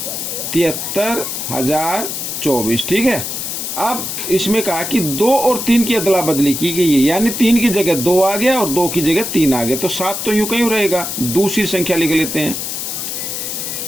73,024। ठीक है, अब इसमें कहा कि 2 और 3 की अदला बदली की गई है, यानी 3 की जगह 2 आ गया और 2 की जगह 3 आ गया, तो 7 तो यूं कहीं रहेगा। दूसरी संख्या लिख लेते हैं,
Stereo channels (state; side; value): noise; left; hiss, 4 dB below the sound